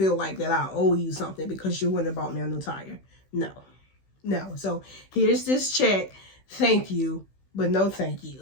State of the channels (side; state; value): right; late; 16 ms